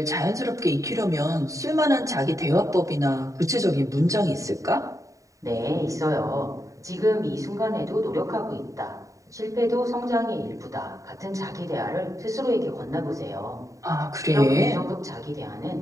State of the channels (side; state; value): left; late; 0.16 ms